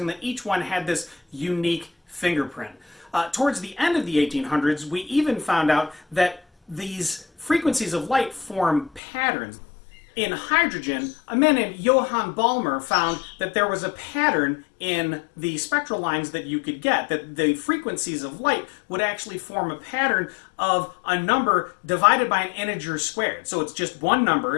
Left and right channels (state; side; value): drops out; right; at 9.0 s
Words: that each one had this unique fingerprint. Towards the end of the 1800s, we even found out that these frequencies of light form patterns. In hydrogen, a man named Johann Balmer found that there was a pattern in the spectral lines that you could get, that the frequencies of light would actually form a pattern of a number divided by an integer squared. So it's just one